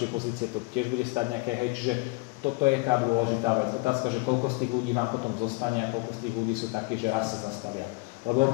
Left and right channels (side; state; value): right; quieter; 26.1 dB